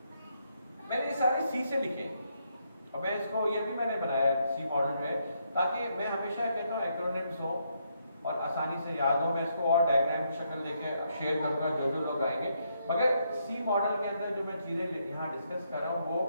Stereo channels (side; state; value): both; inverted; correlation -0.76